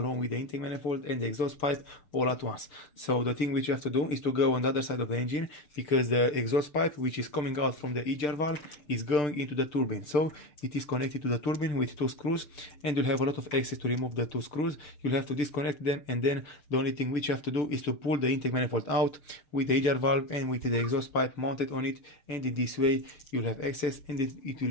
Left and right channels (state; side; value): late; right; 6.8 ms